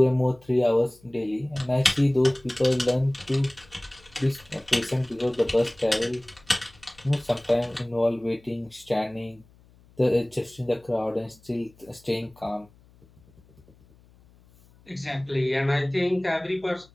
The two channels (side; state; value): left; noise; hum, 28 dB below the sound